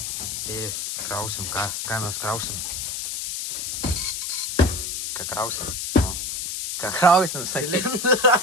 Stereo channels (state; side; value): noise; left; hiss, 3 dB below the sound